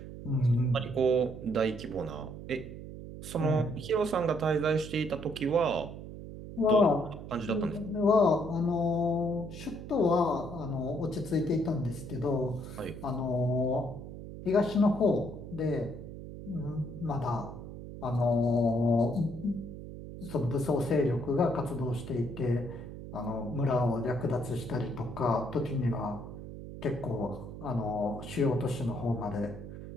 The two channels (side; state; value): right; noise; hum, 11 dB below the sound